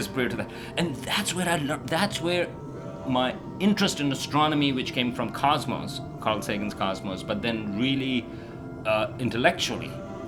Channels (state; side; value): identical; both; correlation 1.00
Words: prior to that. And that's where I learned, that's where my interest in astronomy, which came from Cosmos, Carl Sagan's Cosmos, but then really intellectually,